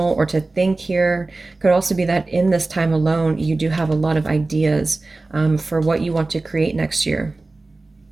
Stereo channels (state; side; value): quieter; left; 3.3 dB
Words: or to think here. Could also be that in this time alone, you do have a lot of ideas for what you want to create next year.